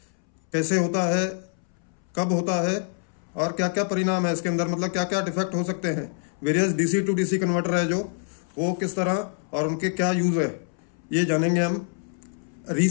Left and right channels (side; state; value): right; silent; 61 dB below the other